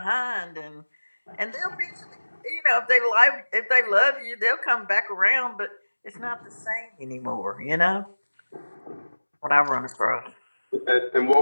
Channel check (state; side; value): inverted; both; correlation -1.00